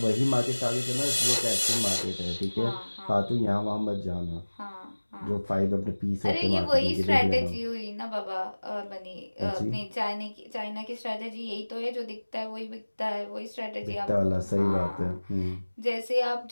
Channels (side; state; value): both; inverted; correlation -1.00